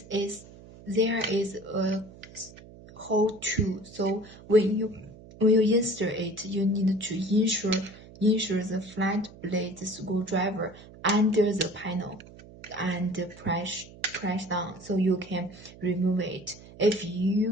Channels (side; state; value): right; noise; hum, 19 dB below the sound